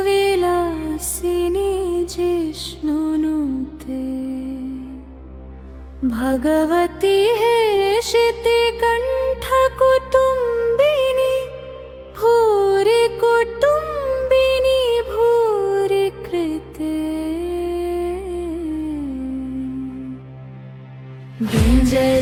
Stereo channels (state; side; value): identical; both; correlation 1.00